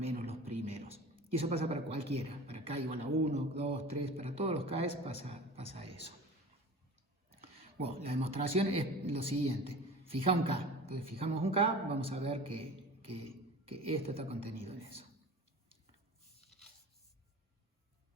los primeros. Y eso pasa para cualquiera, para K igual a 1, 2, 3, para todos los K pasa eso. Bueno, la demostración es lo siguiente. Fija un K. Entonces fijamos un K, vamos a ver que esto está contenido en eso.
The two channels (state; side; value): normal; both; correlation 0.37